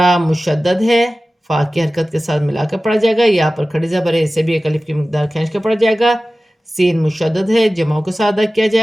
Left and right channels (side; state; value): both; normal; correlation 0.96